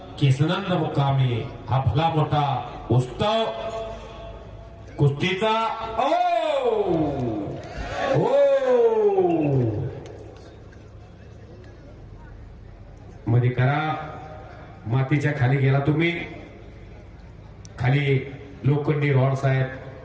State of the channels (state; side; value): identical; both; correlation 1.00